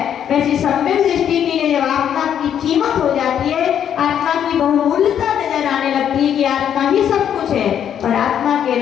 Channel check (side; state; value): right; quieter; 9.3 dB